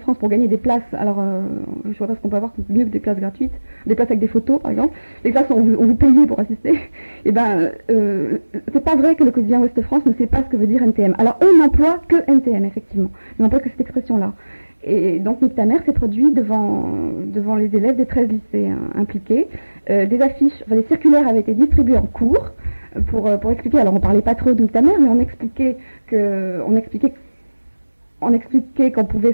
pour gagner des places. Alors, je vois pas ce qu'on peut avoir mieux que des places gratuites, des places avec des photos, par exemple. Des places où on vous payait pour assister. Et c'est pas vrai que le quotidien Ouest France ne sait pas ce que veut dire NTM. Alors, eux n'emploient que NTM, effectivement. Ils n'emploient que cette expression-là. Et donc Nick ta mère s'est produit devant les élèves des 13 lycées impliqués. Des affiches, des circulaires avaient été distribués en cours pour expliquer. Alors on parlait pas trop de Nick ta mère, mais on expliquait qu'on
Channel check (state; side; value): inverted; both; correlation -1.00